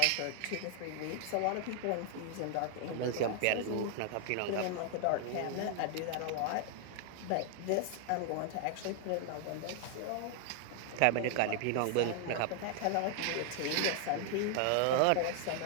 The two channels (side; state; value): both; different; correlation 0.00